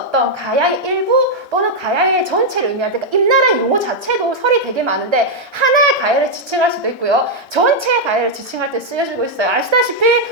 가야의 일부 또는 가야의 전체를 의미할 때 임나라는 용어 자체도 설이 되게 많은데 하나의 가야를 지칭할 수도 있고요. 전체의 가야를 지칭할 때 쓰여지고 있어요. 아시다시피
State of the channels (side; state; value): both; normal; correlation -0.02